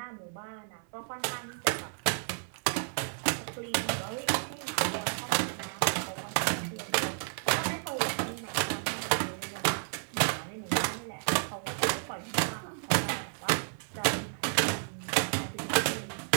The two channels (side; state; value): left; silent; 57 dB below the other